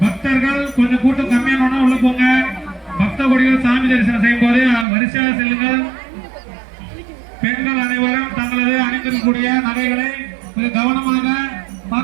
பக்தர்கள் கொஞ்சம் கூட்டம் கம்மியான உள்ள போங்க. பக்த கொடிகள் சாமி தரிசனம் செய்யும் போது வரிசையாக செல்லுங்கள். பெண்கள் அனைவரும் தங்களது அணிந்திருக்கக்கூடிய நகைகளை மிக கவனமாக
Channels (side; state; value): left; drops out; at 4.9 s